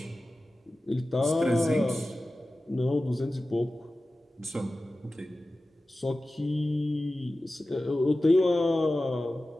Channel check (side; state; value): both; normal; correlation 0.95